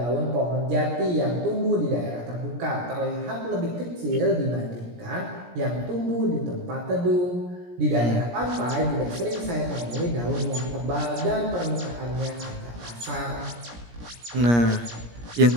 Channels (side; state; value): left; late; 17 ms